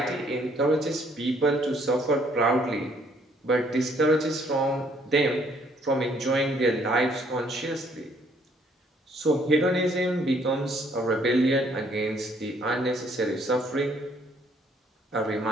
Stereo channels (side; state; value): both; normal; correlation 0.65